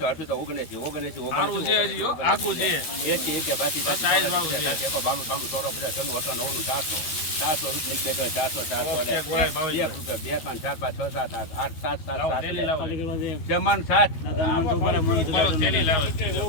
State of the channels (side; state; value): right; late; 13 ms